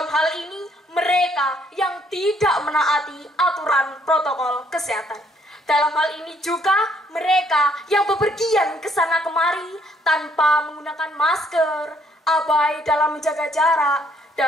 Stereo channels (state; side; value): normal; both; correlation 0.67